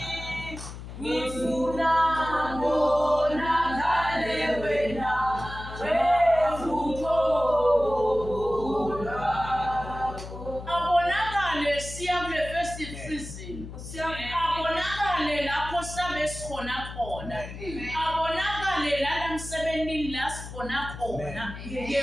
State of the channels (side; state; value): left; noise; hum, 11 dB below the sound